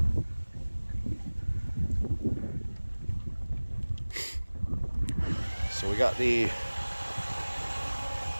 so we got the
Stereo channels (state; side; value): inverted; both; correlation -1.00